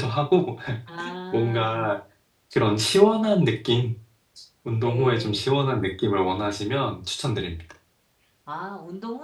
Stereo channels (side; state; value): both; identical; correlation 1.00